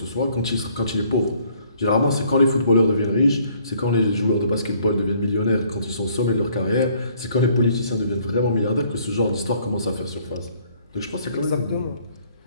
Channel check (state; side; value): inverted; both; correlation -0.62